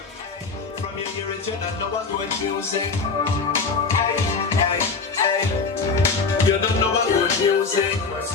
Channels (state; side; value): quieter; right; 4.7 dB